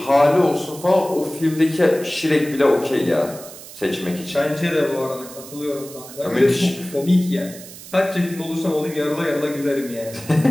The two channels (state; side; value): noise; right; hiss, 16 dB below the sound